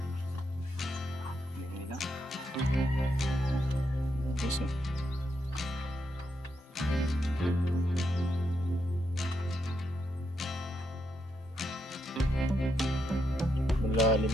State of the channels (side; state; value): both; normal; correlation 0.81